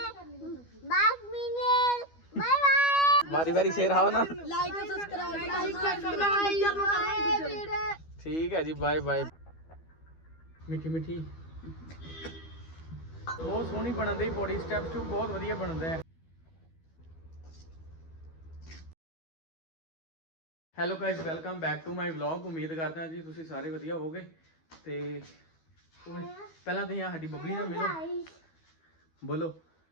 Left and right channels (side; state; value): right; late; 12 ms